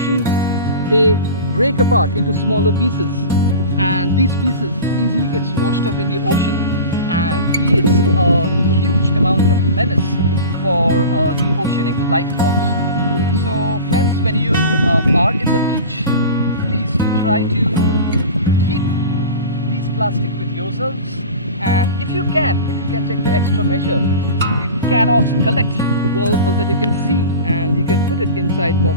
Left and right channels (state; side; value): inverted; both; correlation -0.34